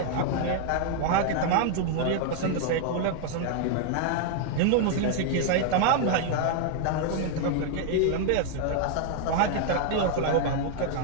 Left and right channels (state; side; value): different; both; correlation 0.00